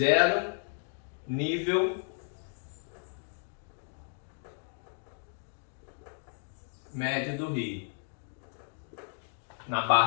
nível médio do rio, na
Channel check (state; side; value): silent; right; 56 dB below the other